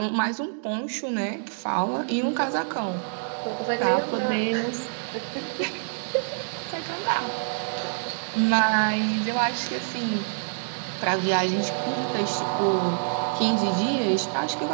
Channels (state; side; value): silent; left; digital silence